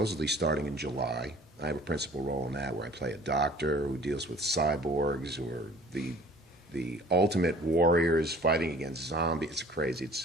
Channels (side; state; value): both; normal; correlation 0.51